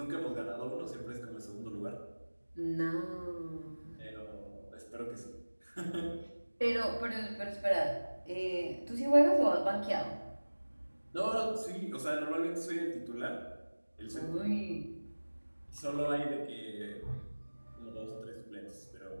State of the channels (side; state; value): both; inverted; correlation -1.00